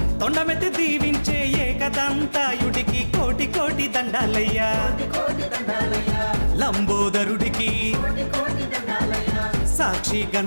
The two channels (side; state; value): both; inverted; correlation -1.00